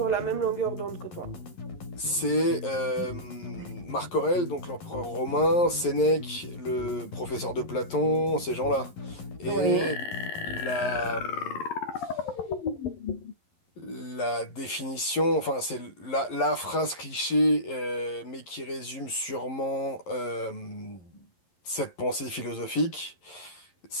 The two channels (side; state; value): right; late; 11 ms